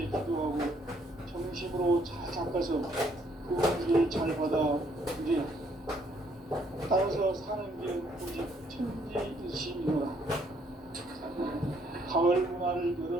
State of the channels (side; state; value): both; normal; correlation 0.68